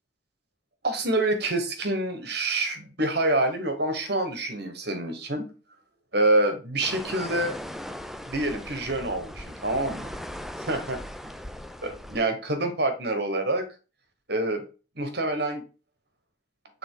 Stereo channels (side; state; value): both; normal; correlation -0.16